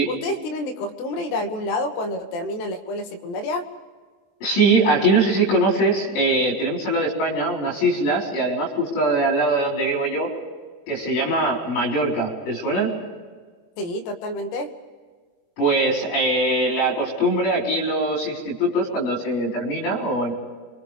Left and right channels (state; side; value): late; right; 23 ms